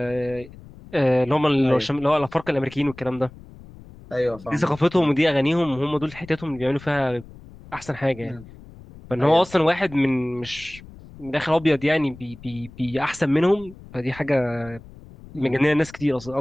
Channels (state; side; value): noise; left; rumble, 19 dB below the sound